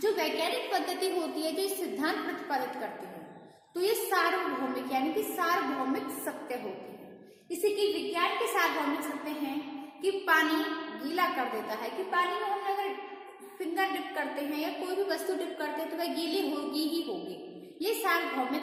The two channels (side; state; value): both; identical; correlation 1.00